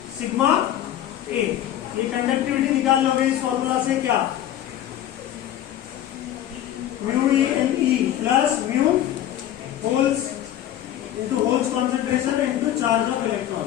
सिग्मा A. ये कंडक्टिविटी निकाल लोगे इस फॉर्मूला से. क्या? Mu E N E plus mu holes into holes concentration into charge of electron.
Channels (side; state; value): right; quieter; 11.8 dB